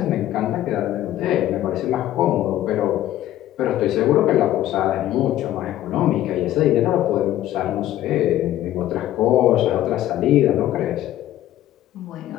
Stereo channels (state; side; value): quieter; right; 13.3 dB